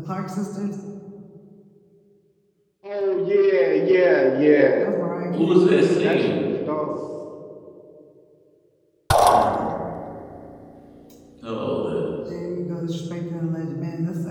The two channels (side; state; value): both; identical; correlation 1.00